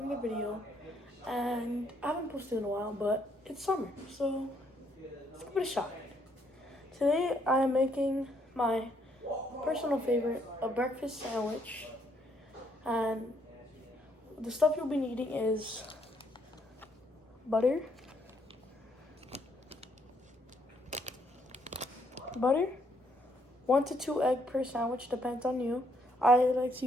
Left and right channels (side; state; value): both; normal; correlation 0.70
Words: video. And I haven't posted in a while, but it's summer, so let's give it a shot. Today I am making my personal favorite, a breakfast sandwich. And the stuff you'll be needing is butter, 1 to 2 eggs per sandwich, depends on you. I like to